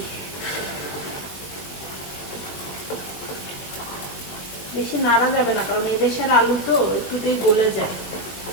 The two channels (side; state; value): right; late; 21 ms